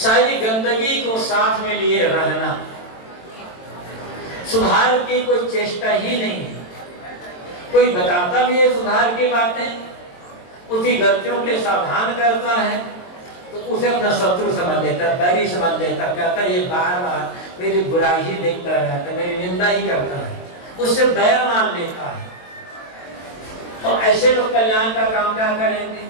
गंदगी को साथ में लिए रहना, सुधार की कोई चेष्टा ही नहीं है। कोई बताता भी है सुधार की बातें, उसकी गलतियों के सावधान करता है, तो उसे अपना शत्रु समझ लेता, बैरी समझ लेता, कहता ये बार बार मेरी बुराई ही देखता रहता है, मेरी निंदा ही करता है, उससे बैर मान लेता है। और ऐसे लोग कल्याण का काम क्या करेंगे?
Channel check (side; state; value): right; late; 22 ms